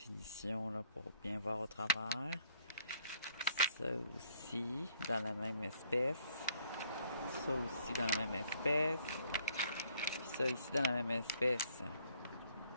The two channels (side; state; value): both; inverted; correlation -0.64